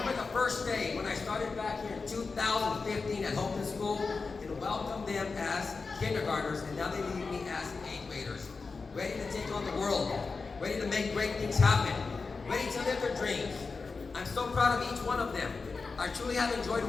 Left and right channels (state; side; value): quieter; right; 4.4 dB